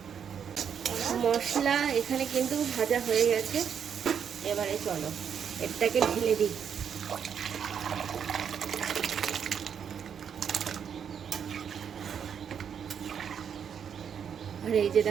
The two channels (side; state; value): left; quieter; 7.8 dB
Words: মশলা এখানে কিন্তু ভাজা হয়ে গেছে। এবারে চলো এটাকে ঢেলে দিই। আর এই যে